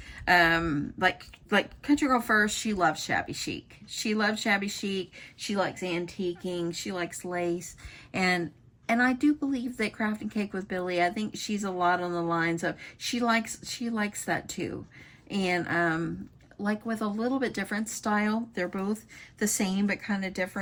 Like Country Girl First, she loves shabby chic. She loves shabby chic. She likes antiquing. She likes lace. And I do believe that Crafting Cake with Billy, I think she's a lot on the lines of, she likes that too. And like with a little bit different style. They're both the same, but kind of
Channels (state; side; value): identical; both; correlation 1.00